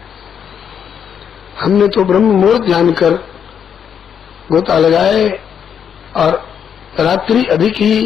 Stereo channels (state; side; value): quieter; right; 8.0 dB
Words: हमने तो ब्रह्म मुहूर्त जानकर गोता लगाए और रात्रि अधिक